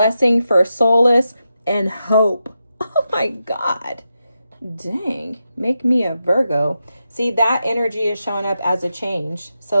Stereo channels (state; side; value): inverted; both; correlation -0.88